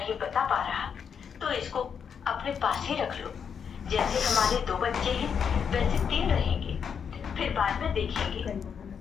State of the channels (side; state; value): right; quieter; 7.1 dB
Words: बता पा रहा तो इसको अपने पास ही रख लो। जैसे हमारे 2 बच्चे हैं वैसे 3 रहेंगे। फिर बाद में देखेंगे,